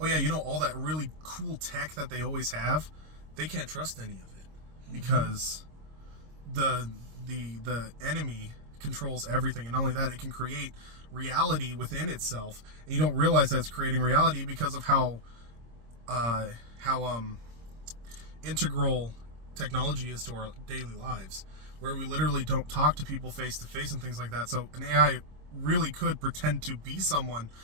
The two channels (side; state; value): left; late; 26 ms